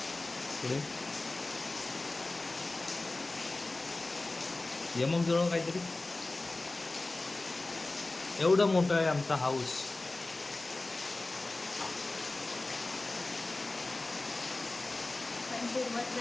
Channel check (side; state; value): right; quieter; 3.1 dB